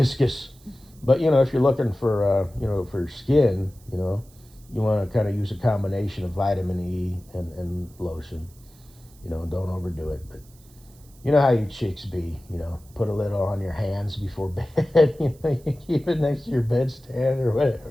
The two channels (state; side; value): noise; right; hiss, 27 dB below the sound